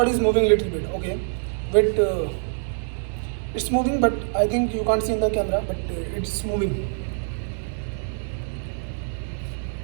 is moving a little bit, okay. But it's moving, but I think you can't see in the camera, but it's moving.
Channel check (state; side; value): silent; left; digital silence